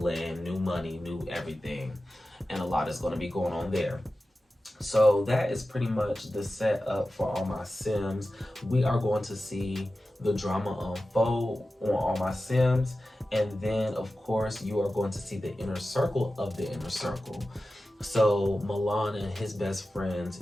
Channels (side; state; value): both; normal; correlation 0.94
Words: new money, new everything. And a lot is going to be going on there. So that is pretty much the setup for All My Sims. We are going to see the drama unfold on All My Sims. And then, of course, you are going to see the inner circle of the inner circle. So Milan and his best